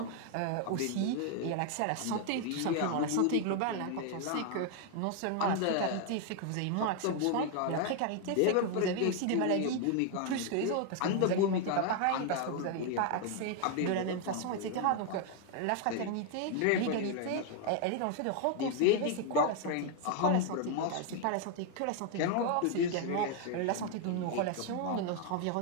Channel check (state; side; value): different; both; correlation 0.00